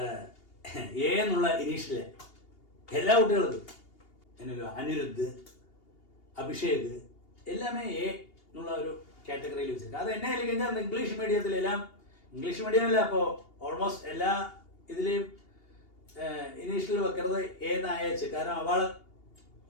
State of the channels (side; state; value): right; late; 2.8 ms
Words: ஏன்னுள்ள இனிஷியல் எல்லா குட்டிகளுக்கும் என்னது அனிருத், அபிஷேக் எல்லாமே എന്നുള്ള ഒരു കാറ്റഗറിയിൽ വെച്ചിട്ടുണ്ട്. അത് എന്നെ അല്ലെങ്കിൽ அந்த ഇംഗ്ലീഷ് മീഡിയത്തിലെല്ലാം ഇംഗ്ലീഷ് മീഡിയമല്ല, അപ്പോൾ ഓൾമോസ്റ്റ് എല്ലാ ഇതിലെയും ഇനീഷ്യൽ വെക്കുന്നത് ഏന്നായച്ച്. കാരണം അവൾ